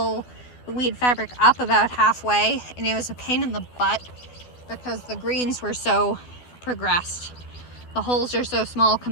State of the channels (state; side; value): late; right; 12 ms